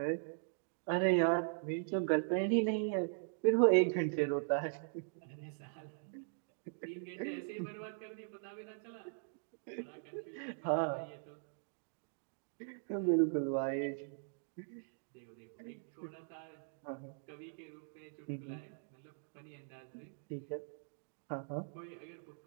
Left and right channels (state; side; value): silent; left; digital silence